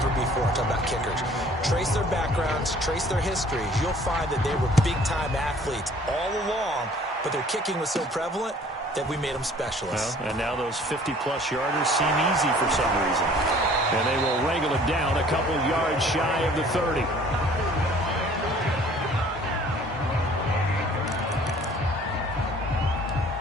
before. I'm talking about kickers. Trace their backgrounds, trace their histories. You'll find that they were big-time athletes all along, but their kicking was so prevalent, that we made them specialists. Well, and now those 50-plus yarders seem easy for some reason. And they will wrangle it down a couple yards shy of the 30.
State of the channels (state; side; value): normal; both; correlation 0.53